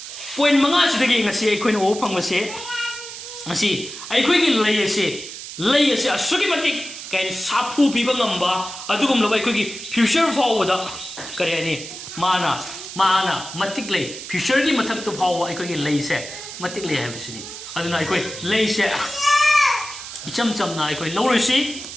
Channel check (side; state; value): right; noise; hiss, 11 dB below the sound